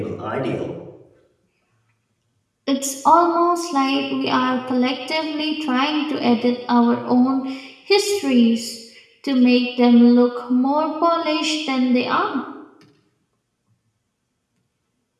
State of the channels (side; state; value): both; identical; correlation 1.00